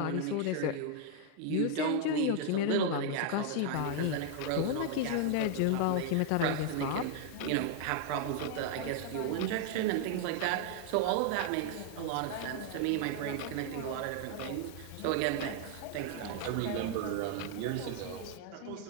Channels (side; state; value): both; different; correlation 0.00